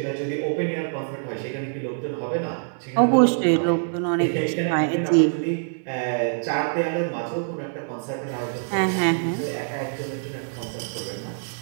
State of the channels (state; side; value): silent; left; digital silence